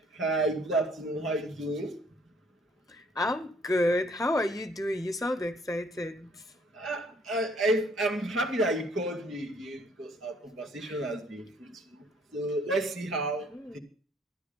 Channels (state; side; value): normal; both; correlation 0.62